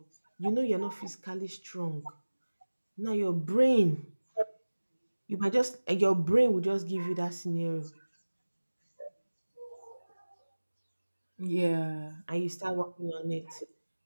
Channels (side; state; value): both; inverted; correlation -1.00